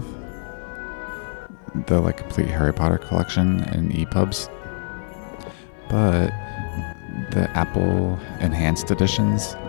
the complete Harry Potter collection in EPUBs, but the Apple enhanced editions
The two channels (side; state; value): right; silent; 55 dB below the other